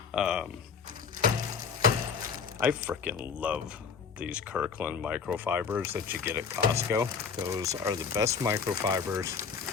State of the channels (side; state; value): right; quieter; 6.1 dB